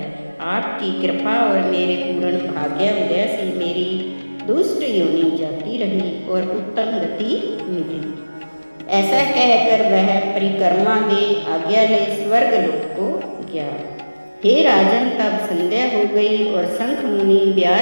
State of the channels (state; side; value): inverted; both; correlation -1.00